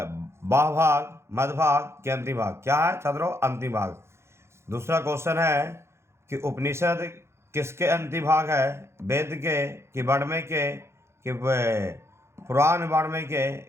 भाग, मध्य भाग के अंतिम भाग? क्या है छात्रों? अंतिम भाग। दूसरा क्वेश्चन है कि उपनिषद किसके अंतिम भाग है? वेद के कि वाङ्मय के कि पुराण वाङ्मय के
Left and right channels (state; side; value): late; left; 0.13 ms